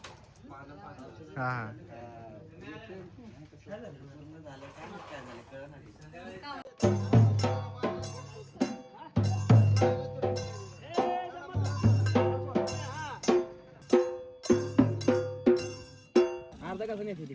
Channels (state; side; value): identical; both; correlation 1.00